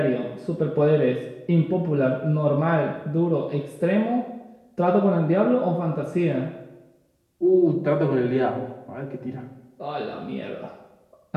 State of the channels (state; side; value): identical; both; correlation 1.00